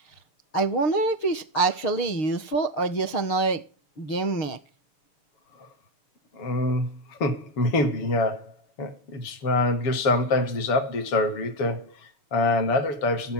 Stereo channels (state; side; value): late; right; 6.5 ms